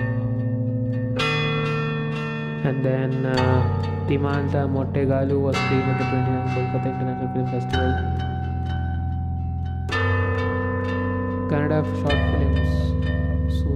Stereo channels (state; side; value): identical; both; correlation 1.00